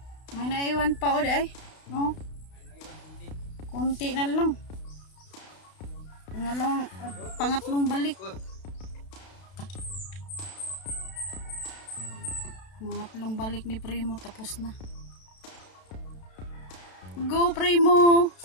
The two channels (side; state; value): right; late; 32 ms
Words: May naiwan pa o di ay. No? Kunti na lang. Pangatlong balik. Pangatlong balik ni Primo tapos na. Go Primo.